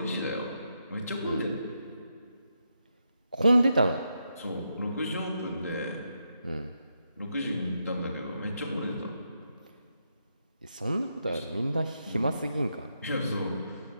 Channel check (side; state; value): both; inverted; correlation -0.83